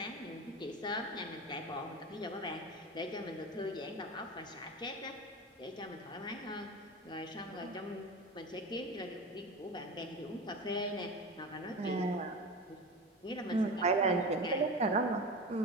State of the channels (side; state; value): both; normal; correlation 0.28